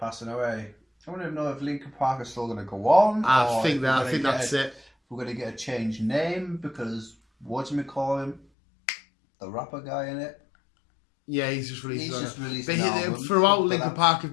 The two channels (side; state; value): right; drops out; at 8.5 s